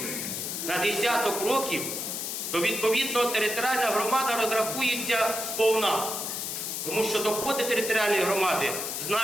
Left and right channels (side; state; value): left; noise; hiss, 4 dB below the sound